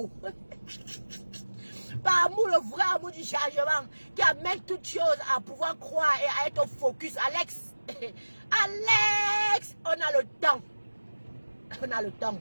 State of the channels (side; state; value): both; inverted; correlation -1.00